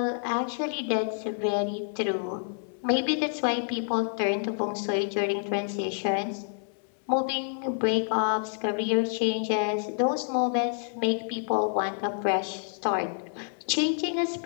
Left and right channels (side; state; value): right; silent; 59 dB below the other